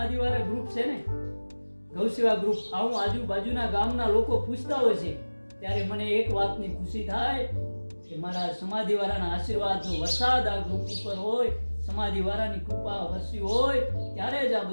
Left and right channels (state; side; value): inverted; both; correlation -1.00